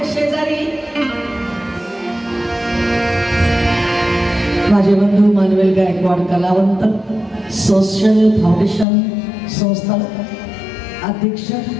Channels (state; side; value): drops out; right; at 8.8 s